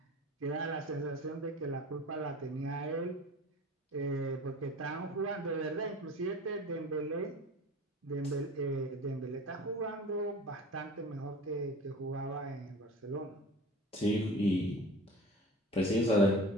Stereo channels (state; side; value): normal; both; correlation 0.38